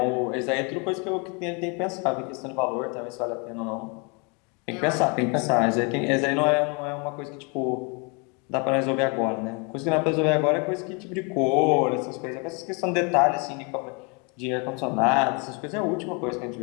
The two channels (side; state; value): right; quieter; 32.9 dB